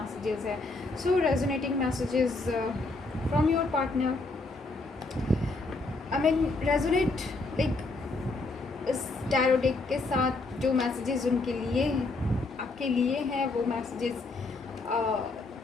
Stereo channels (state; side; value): quieter; right; 3.3 dB